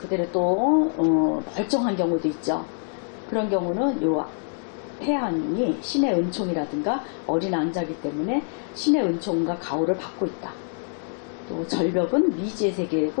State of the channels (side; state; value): right; silent; 62 dB below the other